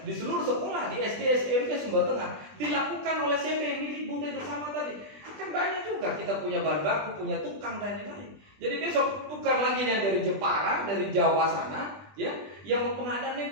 di seluruh sekolah di SD, SMP Sumber Tengah dilakukan oleh CV milik BUMDes bersama tadi. Kan banyak juga kita punya bahan baku, punya tukang dan lain-lain. Jadi besok tukar lagi yang dari Jepara, dari Jawa sana, ya, yang mau pengadaan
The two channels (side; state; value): left; late; 20 ms